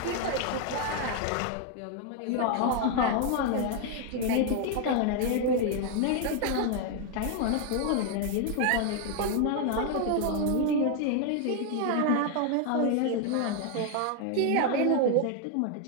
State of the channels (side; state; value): both; different; correlation 0.01